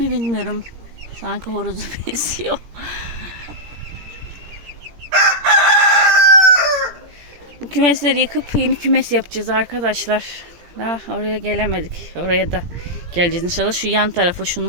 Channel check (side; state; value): left; late; 17 ms